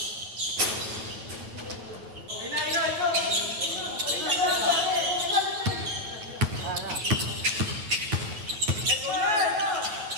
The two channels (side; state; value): left; late; 9.6 ms